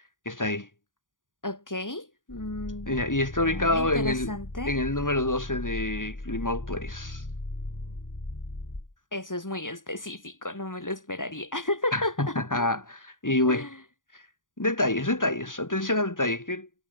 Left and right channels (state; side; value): late; right; 0.89 ms